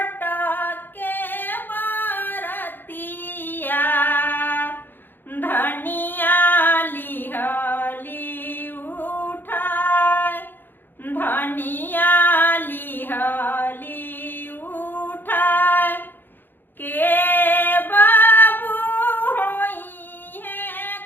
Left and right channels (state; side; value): late; right; 0.095 ms